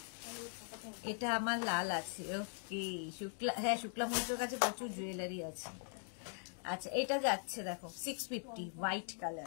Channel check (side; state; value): right; silent; 51 dB below the other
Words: এটা আমার লাল আছে, ওকে শুক্লা, হ্যাঁ শুক্লা মৈত্রের কাছে প্রচুর জুয়েলারি আছে। আচ্ছা এটা যাচ্ছে দেখো 650 হোয়াইট